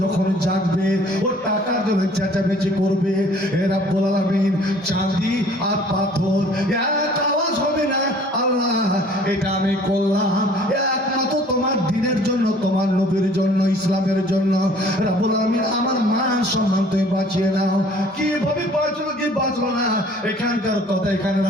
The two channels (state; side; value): normal; both; correlation 0.54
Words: যখন জাগবে ও টাকার জন্য চেঁচামেচি করবে। এ রাব্বুল আলামিন, চাঁদি আর পাথর এক আওয়াজ হবে না। আল্লাহ এটা আমি করলাম একমাত্র তোমার দিনের জন্য, তোমার নবীর জন্য, ইসলামের জন্য। রাব্বুল আলামিন আমার মান সম্মান তুমি বাঁচিয়ে নাও। কিভাবে বাঁচলো কি বাঁচলো না এখানকার কথা এখানে